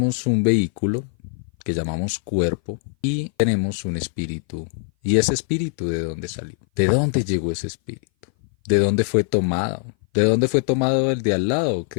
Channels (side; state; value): right; silent; 58 dB below the other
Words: un vehículo que llamamos cuerpo y tenemos un espíritu. ¿Y ese espíritu de dónde salió? ¿De dónde llegó ese espíritu? ¿De dónde fue tomado? ¿De dónde fue tomado el de al lado